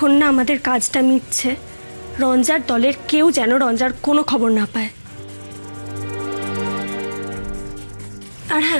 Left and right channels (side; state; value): both; inverted; correlation -1.00